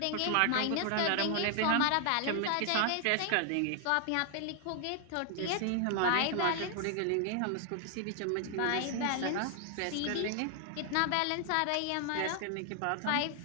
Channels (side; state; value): both; different; correlation 0.00